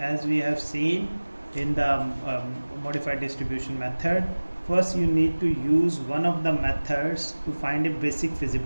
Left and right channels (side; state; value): both; inverted; correlation -1.00